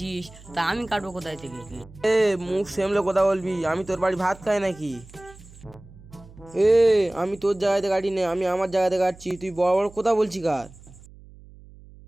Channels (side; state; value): right; noise; hum, 21 dB below the sound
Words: তা আমি কাটবো কোথায় থেকে? মুখ সেমলে কথা বলবি, আমি তোর বাড়ি ভাত খাই নাকি? আমি তোর জায়গাতে কাটি নে, আমি আমার জায়গাতে কাটছি, তুই বড় বড় কথা বলছি কার?